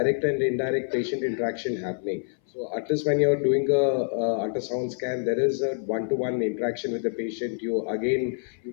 and indirect patient interaction happening. So at least when you're doing a ultrasound scan, there is a one-to-one interaction with the patient. You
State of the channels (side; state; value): right; silent; 58 dB below the other